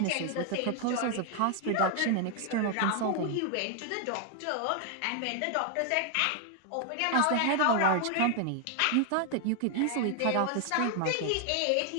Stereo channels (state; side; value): different; both; correlation 0.00